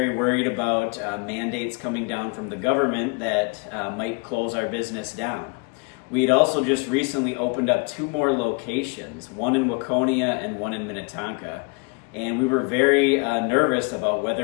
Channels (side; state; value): right; quieter; 31.9 dB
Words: worried about mandates coming down from the government that might close our business down. We had also just recently opened up 2 more locations, one in Waconia and one in Minnetonka, and we were very nervous about